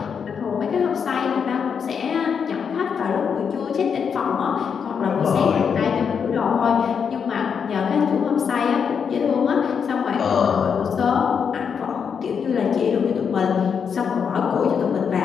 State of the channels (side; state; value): right; quieter; 6.8 dB